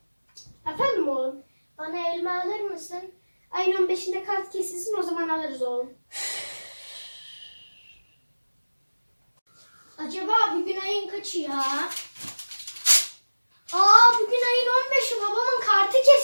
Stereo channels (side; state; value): both; inverted; correlation -1.00